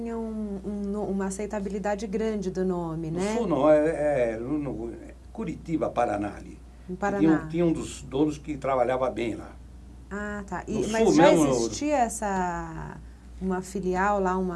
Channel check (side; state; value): both; identical; correlation 1.00